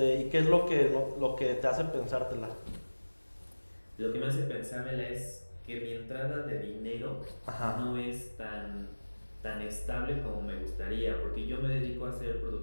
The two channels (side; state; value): both; inverted; correlation -1.00